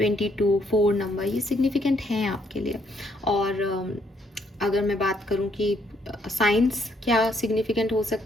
4 नंबर, ये सिग्निफिकेंट हैं आपके लिए। और अगर मैं बात करूं कि साइंस क्या सिग्निफिकेंट हो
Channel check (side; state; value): both; normal; correlation 0.71